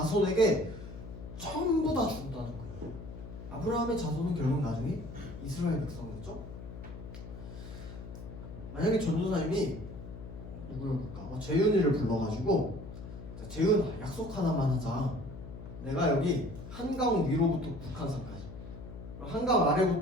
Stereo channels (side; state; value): left; noise; hum, 12 dB below the sound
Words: 전부 다 준다는 거예요. 아브라함의 자손은 결국 나중에 이스라엘 백성이었죠. 만약에 전도사님이 누구였을까? 재윤이를 불러가지고 재윤 약속 하나만 하자. 내가 여기 한강 위로부터 북한산까지, 한강